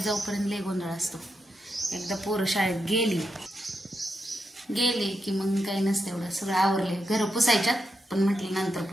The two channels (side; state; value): both; normal; correlation 0.85